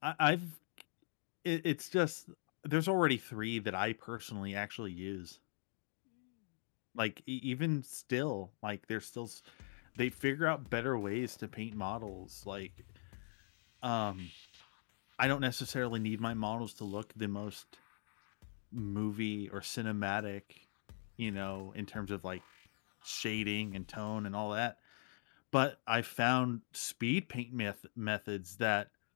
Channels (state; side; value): silent; right; digital silence